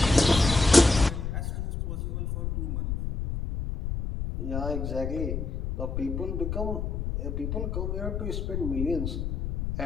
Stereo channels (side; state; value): left; noise; rumble, 3 dB below the sound